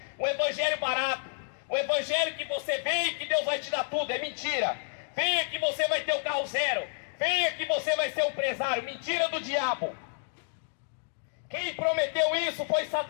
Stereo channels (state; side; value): silent; right; digital silence